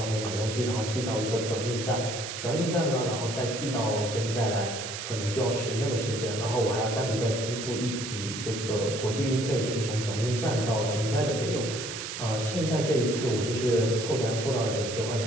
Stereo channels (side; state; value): right; noise; hiss, 7 dB below the sound